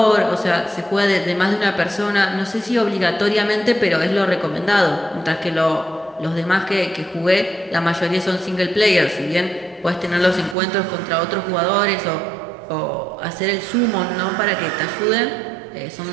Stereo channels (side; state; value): left; drops out; at 10.6 s